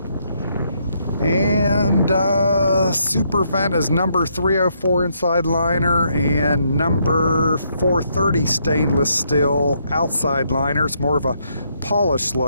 And Supervent is number 304 inside liner and number 430 stainless steel outside liner. It's more of a polished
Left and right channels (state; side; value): inverted; both; correlation -0.74